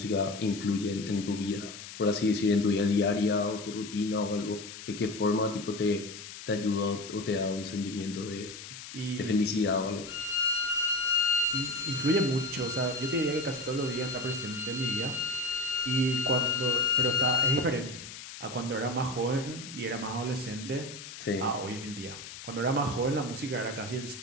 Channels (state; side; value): noise; left; hiss, 12 dB below the sound